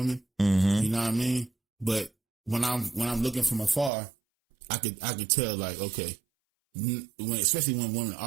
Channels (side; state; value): left; drops out; at 3.9 s